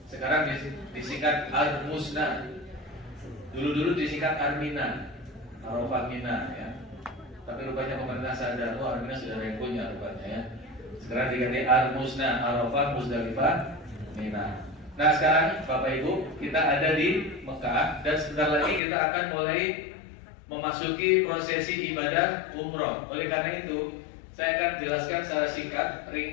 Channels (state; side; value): drops out; right; at 18.8 s